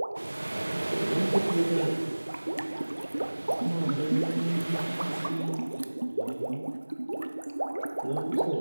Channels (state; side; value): inverted; both; correlation -1.00